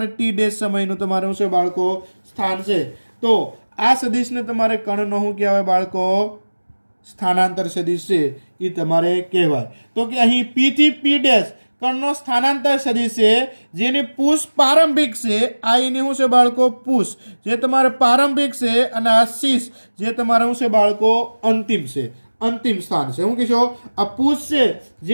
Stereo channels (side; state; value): both; inverted; correlation -1.00